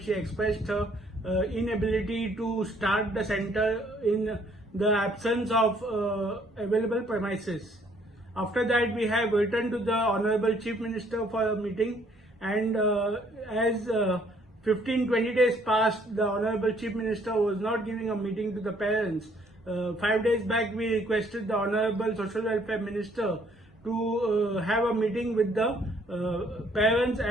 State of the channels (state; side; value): normal; both; correlation 0.64